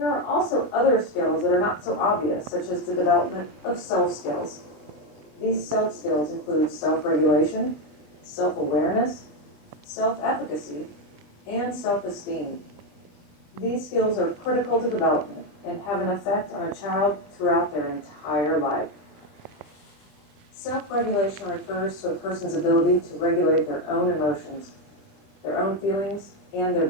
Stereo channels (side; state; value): right; late; 20 ms